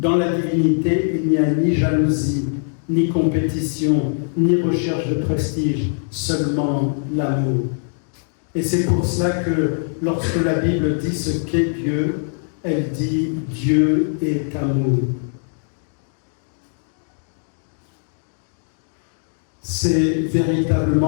la divinité, il n'y a ni jalousie, ni compétition, ni recherche de prestige, seulement l'amour. Et c'est pour cela que lorsque la Bible dit ce qu'est Dieu, elle dit « Dieu est amour ». C'est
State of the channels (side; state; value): right; silent; digital silence